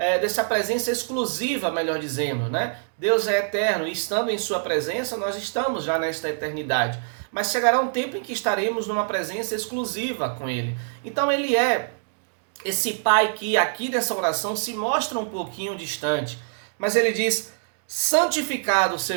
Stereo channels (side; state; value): left; silent; digital silence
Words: dessa presença exclusiva, melhor dizendo, né? Deus é eterno e estando em sua presença, nós estamos já nesta eternidade. Mas chegará um tempo em que estaremos numa presença exclusiva com Ele. Então Ele é esse Pai que aqui nessa oração se mostra um pouquinho distante. Mas Ele diz: santificado